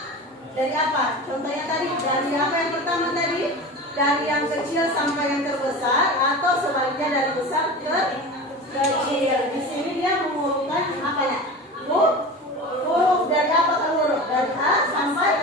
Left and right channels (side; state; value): both; normal; correlation 0.31